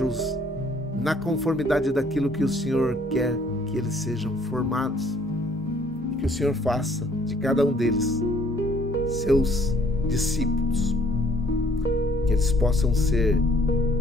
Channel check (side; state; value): both; normal; correlation 0.61